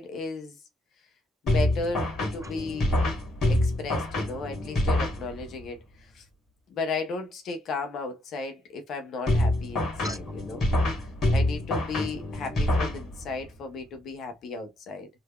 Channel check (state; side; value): normal; both; correlation 0.76